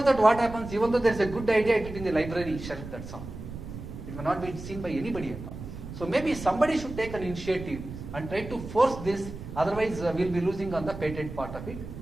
that, what happens, even though there is a good idea, it is in the library shelf, that's all. It may not be seen by anybody at all. So maybe somebody should take an initiative and try to force this, otherwise we'll be losing on the patent part of it.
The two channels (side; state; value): right; noise; rumble, 11 dB below the sound